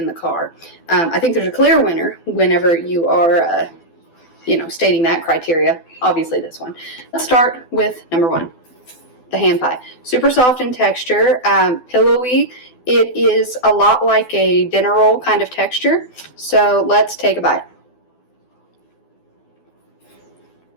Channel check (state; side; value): late; right; 12 ms